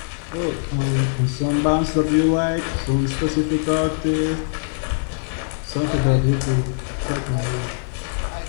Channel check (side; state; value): right; silent; digital silence